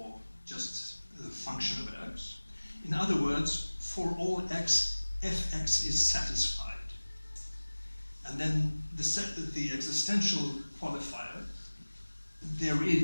just the function of x. In other words, for all x, fx is satisfied. And then the existential qualifier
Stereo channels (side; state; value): both; inverted; correlation -1.00